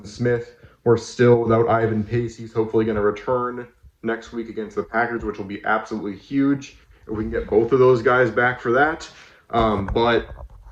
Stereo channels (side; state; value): both; identical; correlation 1.00